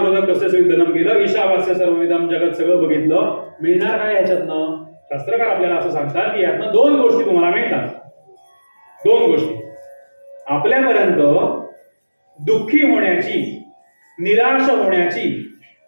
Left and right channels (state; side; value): inverted; both; correlation -1.00